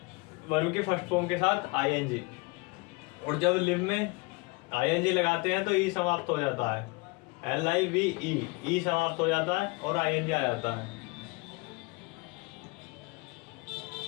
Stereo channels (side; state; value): right; quieter; 26.4 dB